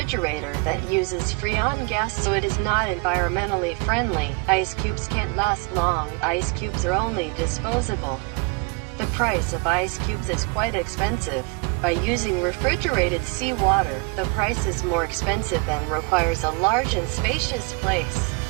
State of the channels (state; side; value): quieter; left; 30.2 dB